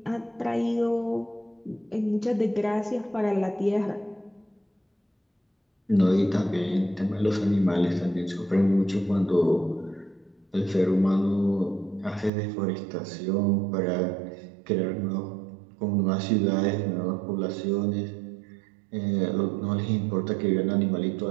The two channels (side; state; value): left; drops out; at 12.3 s